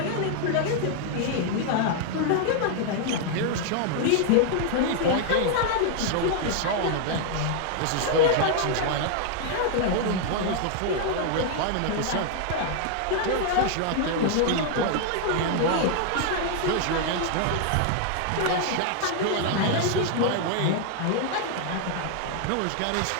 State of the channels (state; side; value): different; both; correlation 0.00